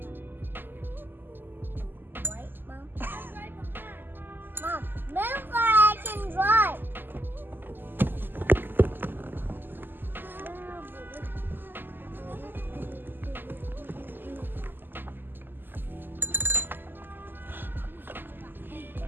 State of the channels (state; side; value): late; left; 0.093 ms